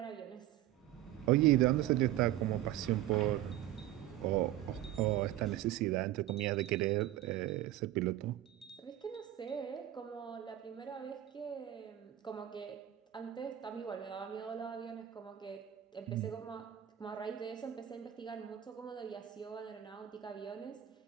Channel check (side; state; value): left; quieter; 13.1 dB